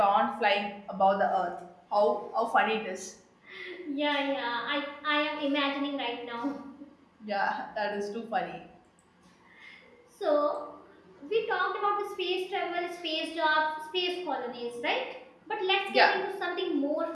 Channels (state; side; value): identical; both; correlation 1.00